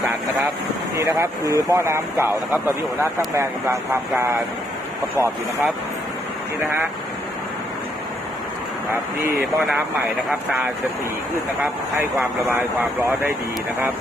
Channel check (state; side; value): normal; both; correlation 0.73